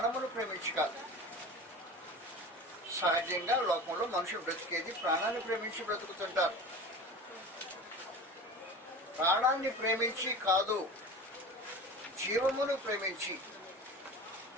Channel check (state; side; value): normal; both; correlation 0.34